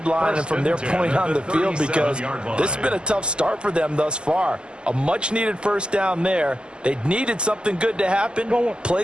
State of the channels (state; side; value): late; left; 0.049 ms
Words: and from their point on the field, because this has been a tough start for them thus far. A much-needed first down there. They needed something good to happen.